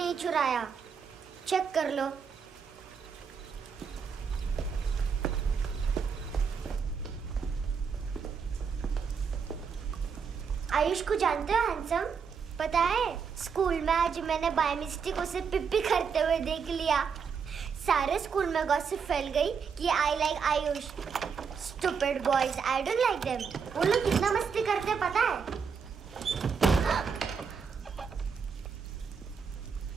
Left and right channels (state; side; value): quieter; left; 6.2 dB